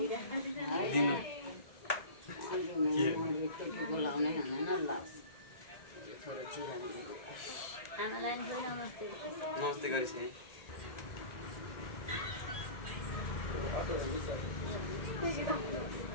बोलाउनै हुँदैन ल छोरो चिरामी आमालाई नमस्ते नमस्ते गरिस् है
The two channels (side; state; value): right; late; 1.8 ms